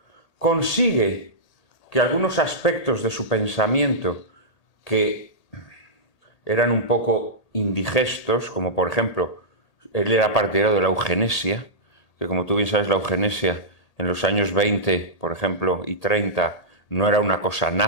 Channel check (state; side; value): late; right; 1.8 ms